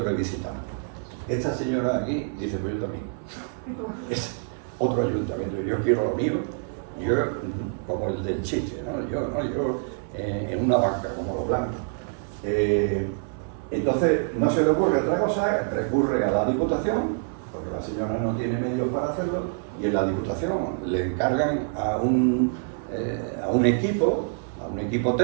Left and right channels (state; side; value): silent; left; 61 dB below the other